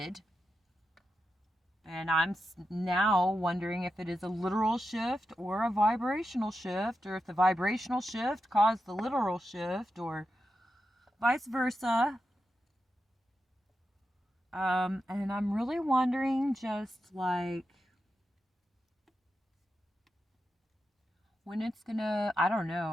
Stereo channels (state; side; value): normal; both; correlation 0.88